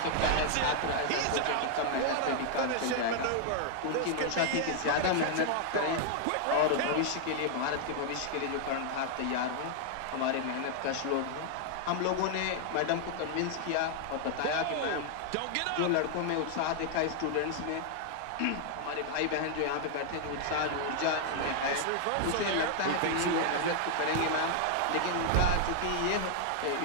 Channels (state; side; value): different; both; correlation 0.00